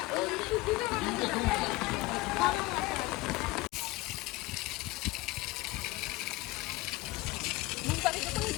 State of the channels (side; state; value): right; quieter; 20.5 dB